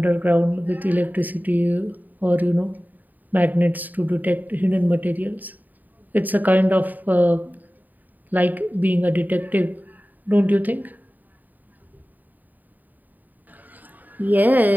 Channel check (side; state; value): left; late; 0.085 ms